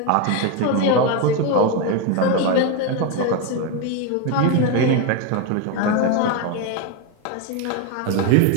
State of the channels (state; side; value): different; both; correlation 0.03